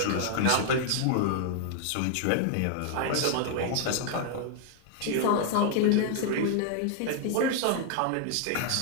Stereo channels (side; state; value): both; different; correlation 0.00